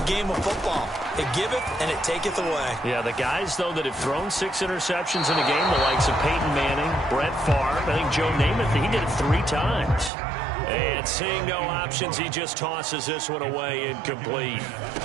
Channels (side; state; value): left; drops out; at 10.1 s